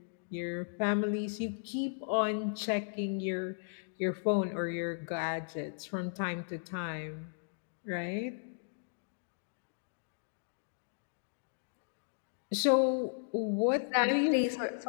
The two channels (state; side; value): silent; right; digital silence